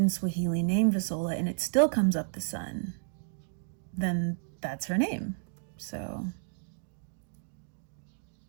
Swahili name 𝘍𝕬𝕚 and it still comes up the sun, then that's her name. So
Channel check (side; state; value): left; silent; digital silence